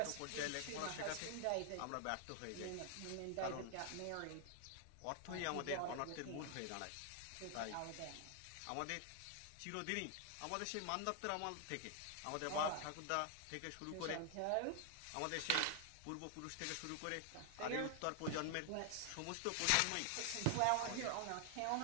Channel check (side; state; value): both; different; correlation 0.00